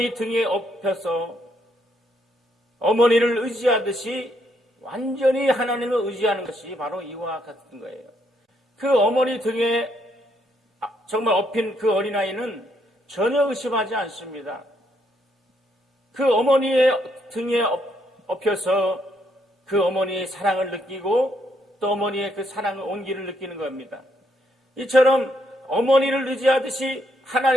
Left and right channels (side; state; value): both; normal; correlation 0.74